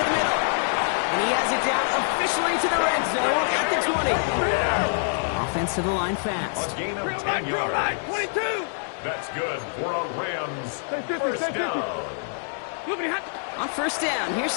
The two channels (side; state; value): right; silent; digital silence